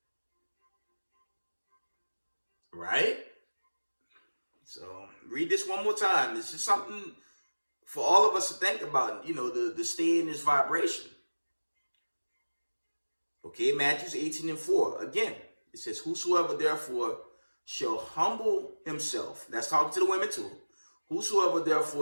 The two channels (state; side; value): inverted; both; correlation -1.00